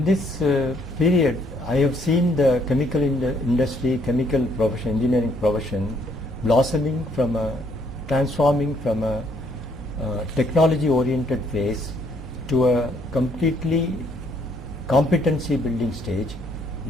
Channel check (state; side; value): normal; both; correlation 0.67